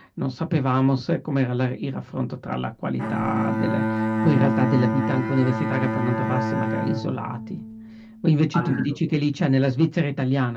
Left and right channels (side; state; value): both; identical; correlation 1.00